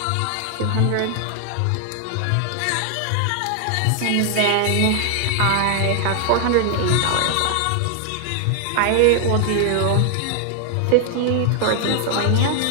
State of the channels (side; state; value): both; different; correlation 0.00